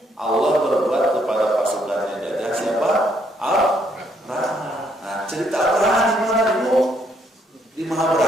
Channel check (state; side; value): normal; both; correlation 0.71